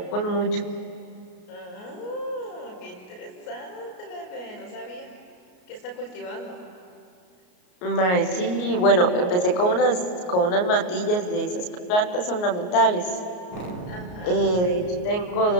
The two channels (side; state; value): right; late; 33 ms